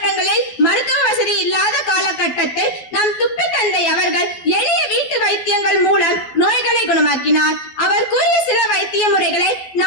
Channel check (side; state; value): right; late; 12 ms